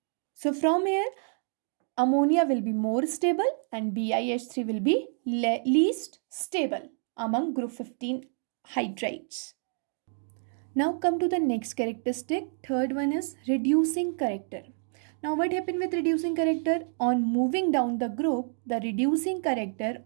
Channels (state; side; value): silent; left; 59 dB below the other